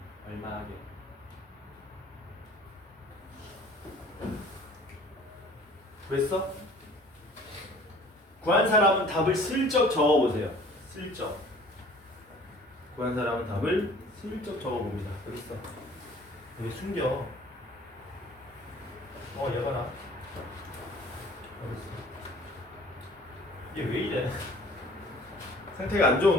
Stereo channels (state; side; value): normal; both; correlation 0.51